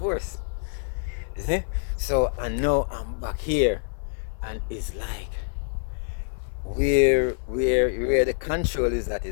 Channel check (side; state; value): right; silent; 61 dB below the other